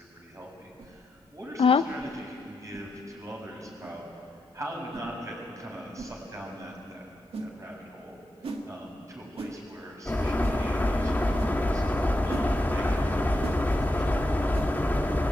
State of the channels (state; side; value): normal; both; correlation 0.86